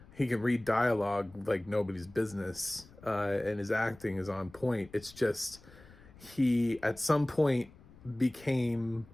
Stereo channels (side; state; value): left; noise; rumble, 23 dB below the sound